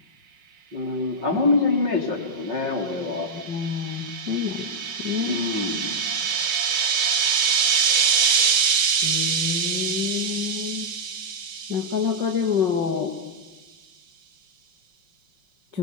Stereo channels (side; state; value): left; late; 5.4 ms